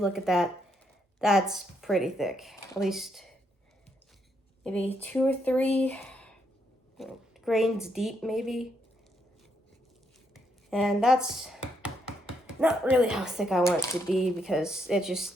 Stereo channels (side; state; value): both; normal; correlation 0.77